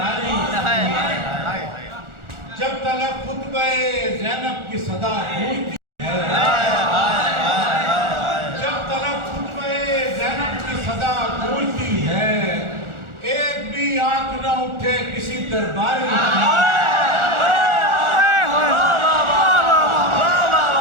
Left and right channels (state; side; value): late; left; 1.4 ms